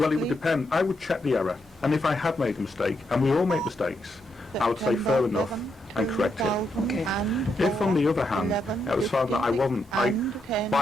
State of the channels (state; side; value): normal; both; correlation 0.80